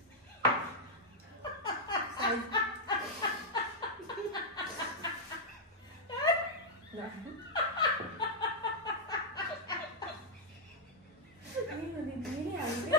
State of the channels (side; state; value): both; normal; correlation -0.04